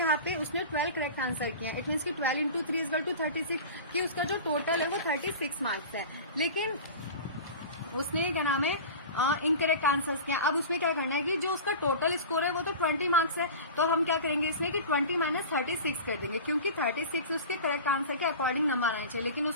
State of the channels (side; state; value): both; inverted; correlation -0.33